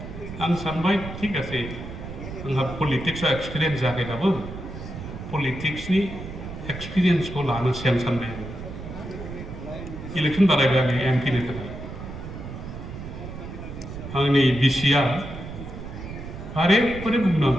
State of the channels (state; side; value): noise; right; rumble, 10 dB below the sound